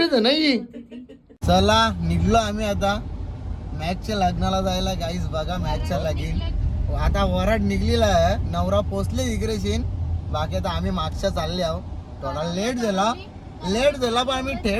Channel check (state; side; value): identical; both; correlation 1.00